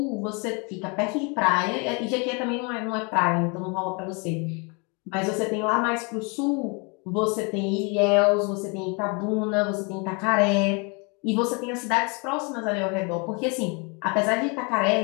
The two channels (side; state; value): right; quieter; 32.1 dB